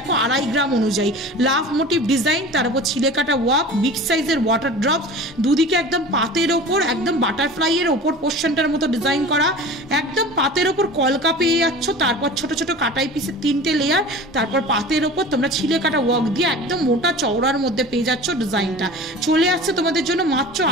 2.5 গ্রাম অনুযায়ী লাভ মোটিভ ডিজাইন, তার উপর ছিলে কাটা ওয়ার্ক, বিগ সাইজের ওয়াটার ড্রপস, দুদিকে একদম পাতের ওপর একদম বাটারফ্লাইয়ের ওপর পোর্শনটার মতো ডিজাইন করা, একদম পাতের ওপর কলকা পেয়ে যাচ্ছ। তারপর ছোট ছোট কাটাই পিসের 3টে লেয়ার, তারপর পাতের ওপর তোমরা ছিলে কাটা ওয়ার্ক দিয়ে একদম মোটা চওড়ার মধ্যে পেয়ে যাচ্ছ ডিজাইনটা। চলে আসছে তোমাদের জন্য মাত্র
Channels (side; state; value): both; normal; correlation 0.37